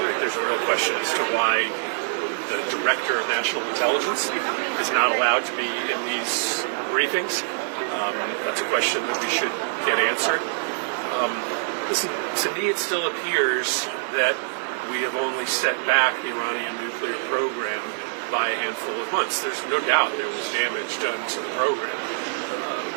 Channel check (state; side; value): silent; left; digital silence